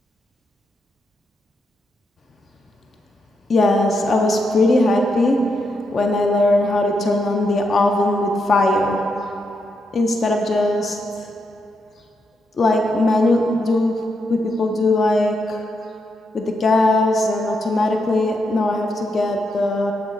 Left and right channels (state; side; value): normal; both; correlation 0.82